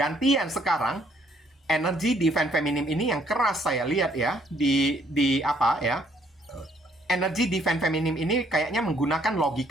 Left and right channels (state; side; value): normal; both; correlation 0.66